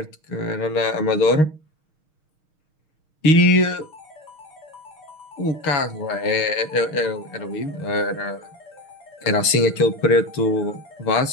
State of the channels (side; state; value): right; late; 6.4 ms